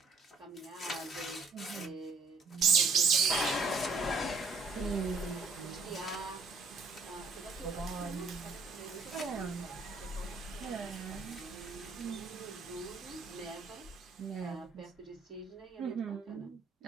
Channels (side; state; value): left; quieter; 4.0 dB